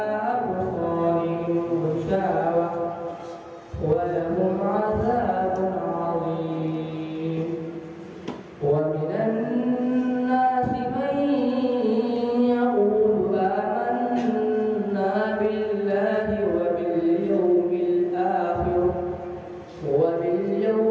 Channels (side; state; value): both; identical; correlation 1.00